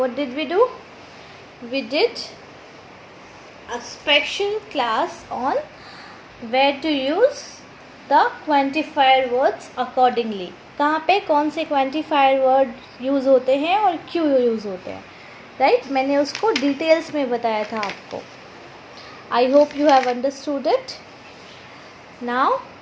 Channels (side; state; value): both; identical; correlation 1.00